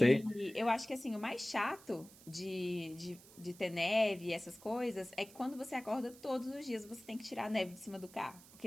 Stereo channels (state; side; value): noise; right; hiss, 21 dB below the sound